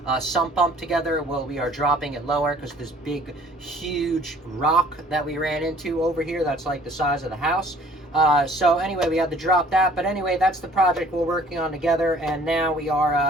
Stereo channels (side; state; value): both; normal; correlation 0.55